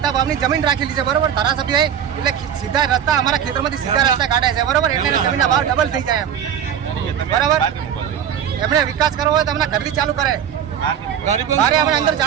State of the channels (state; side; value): quieter; left; 8.9 dB